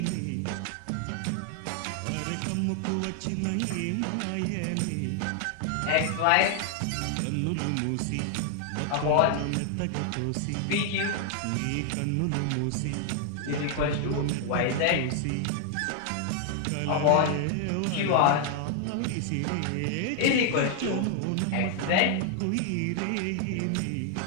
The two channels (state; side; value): different; both; correlation 0.00